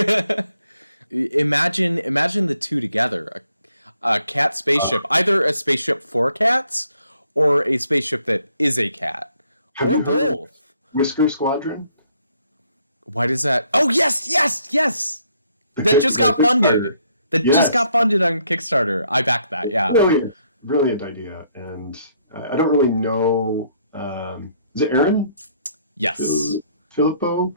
Imagine the two together. A cat spaceship, either a spaceship for cats or a spaceship that is a cat, or both. Whisker Squadron? Why does that? Oh, yes! That just got funded. Just got funded on Kickstarter. I backed that, yeah. Brilliant idea. And I don't really know... is it Aaron? Yes. Filippo?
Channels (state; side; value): inverted; both; correlation -0.69